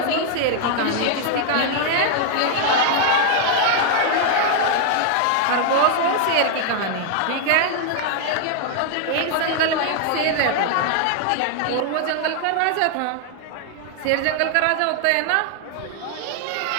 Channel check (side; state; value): both; different; correlation 0.00